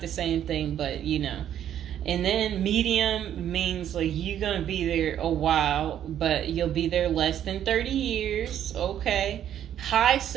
the same thing, but And then medium means like you're going to be there a while, but you'll be there less than 30 years. Okay. High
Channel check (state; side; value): quieter; left; 10.4 dB